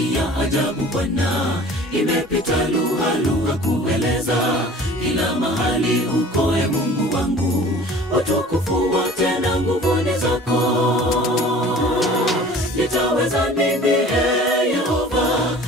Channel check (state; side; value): normal; both; correlation 0.46